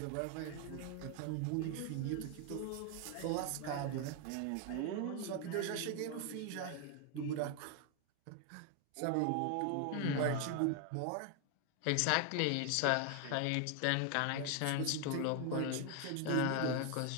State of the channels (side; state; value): both; different; correlation 0.00